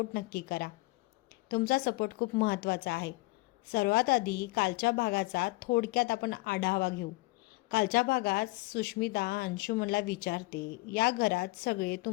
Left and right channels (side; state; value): right; quieter; 22.3 dB